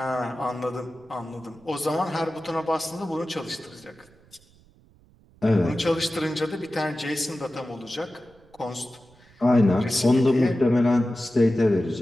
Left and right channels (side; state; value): right; noise; rumble, 29 dB below the sound